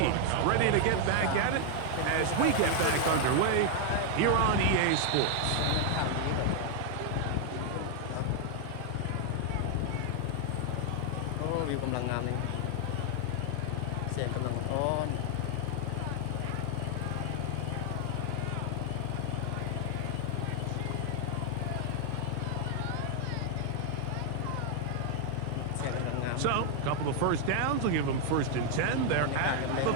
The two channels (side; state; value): both; different; correlation 0.00